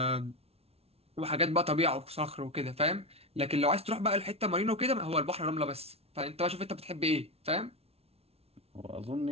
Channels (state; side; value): late; left; 0.30 ms